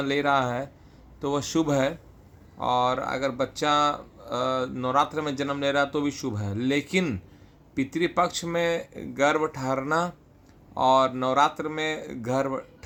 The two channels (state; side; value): identical; both; correlation 1.00